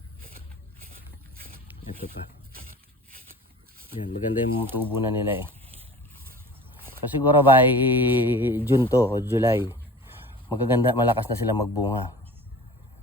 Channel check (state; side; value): normal; both; correlation 0.40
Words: Ito pa. Yan, maganda yung tubo na nila eh. So siguro by June to o July, magaganda, malakas na sila magbunga.